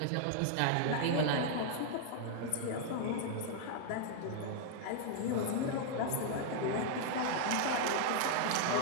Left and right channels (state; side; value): different; both; correlation 0.00